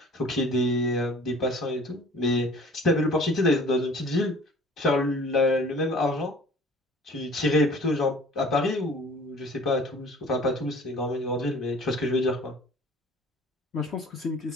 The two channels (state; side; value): normal; both; correlation 0.48